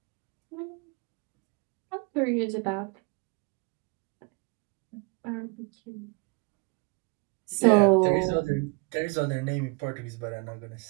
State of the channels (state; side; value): quieter; left; 30.6 dB